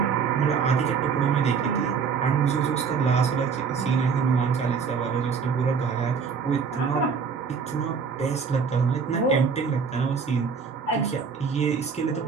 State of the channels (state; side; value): quieter; left; 5.9 dB